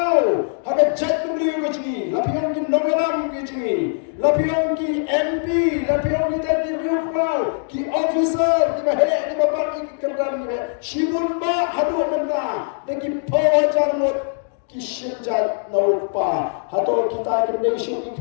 Haga jat beli kecil. Lapian ki nomelam kecil. Lapian ki MP. Lapian ki tadi kurau. Ki officer. Ki bahaya ki bapak ki kerdan ki. Simun ba hadu benda. Deki pawajar not ki sunjat no pa. Hato kita kena isu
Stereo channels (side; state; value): right; silent; digital silence